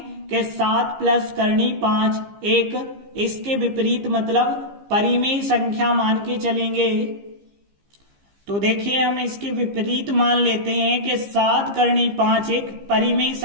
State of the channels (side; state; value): left; late; 15 ms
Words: कि 7 + करनी 5 एक, इसके विपरीत मतलब परिमेय संख्या मान के चलेंगे। तो देखिए हम इसके विपरीत मान लेते हैं कि 7 करनी 5 एक परिमेय